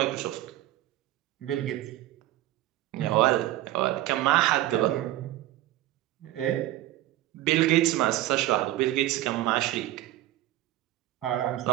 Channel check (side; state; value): left; quieter; 15.3 dB